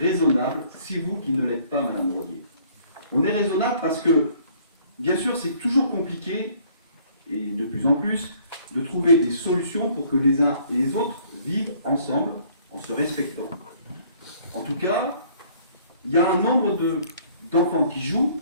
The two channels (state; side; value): inverted; both; correlation -0.59